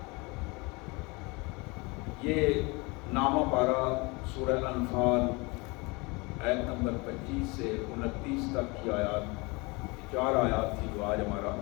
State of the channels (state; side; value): quieter; right; 26.6 dB